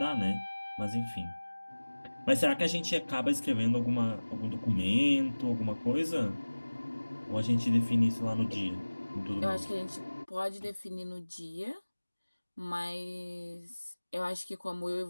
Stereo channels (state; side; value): inverted; both; correlation -1.00